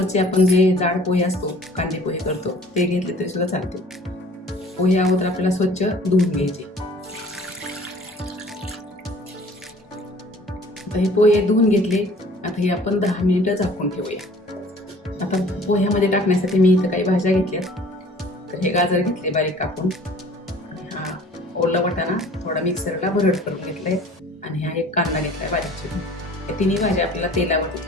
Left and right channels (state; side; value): normal; both; correlation 0.50